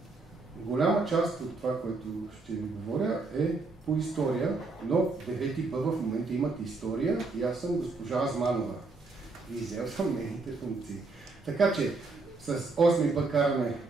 голяма част от това, което ще ви говоря, е по история, но 9Б в момента имат история и аз съм госпожа Азманова. И взел съм нейните функции. Така че с 8Б караме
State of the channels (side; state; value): left; quieter; 3.7 dB